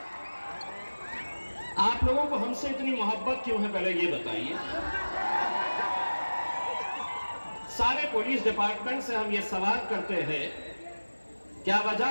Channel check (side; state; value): both; inverted; correlation -1.00